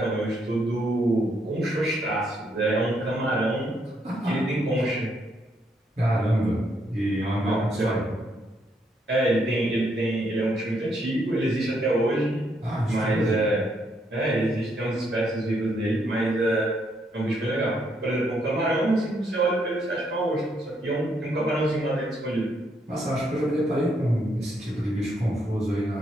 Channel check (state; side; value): normal; both; correlation 0.74